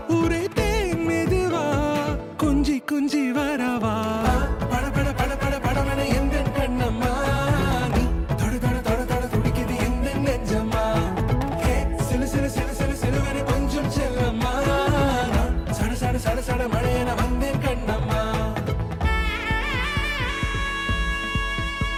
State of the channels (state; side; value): identical; both; correlation 1.00